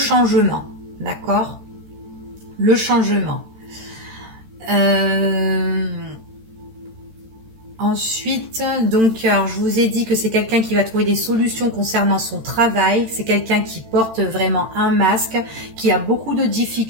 d'accord ? Le changement. Ensuite, donc, alors, je vous ai dit que c'est quelqu'un qui va trouver des solutions concernant son travail. C'est quelqu'un qui porte vraiment un masque, qui a beaucoup de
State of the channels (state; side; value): late; left; 13 ms